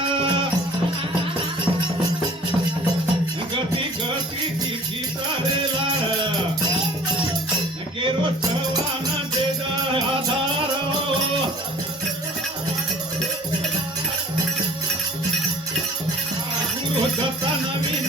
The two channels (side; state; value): both; normal; correlation 0.48